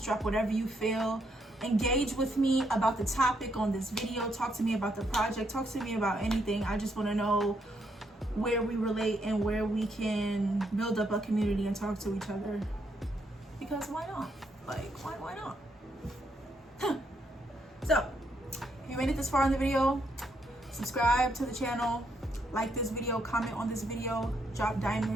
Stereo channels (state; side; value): normal; both; correlation 0.76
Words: drop whatever you feel. Engage with me about the topic on this video. Talk to me about the project. Talk to me about anything. I just want to know where we relate and where we can build up a community and talk to each other. Because why not? Like, why not? So, if you made it this far in the video, subscribe to the channel, like this video, comment on this video, drop